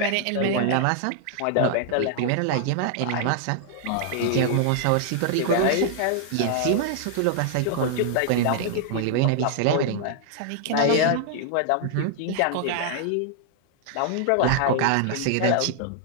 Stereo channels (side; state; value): both; different; correlation 0.00